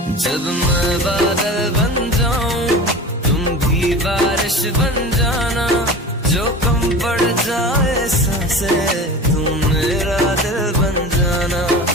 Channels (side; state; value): both; normal; correlation 0.34